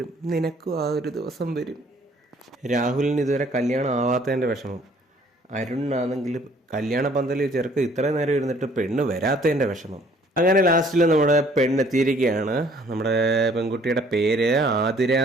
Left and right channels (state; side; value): normal; both; correlation 0.58